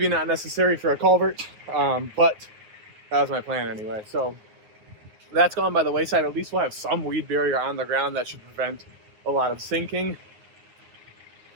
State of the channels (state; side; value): late; left; 9.4 ms